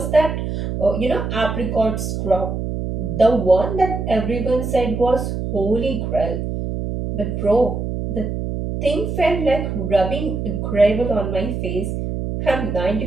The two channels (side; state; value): right; noise; hum, 3 dB below the sound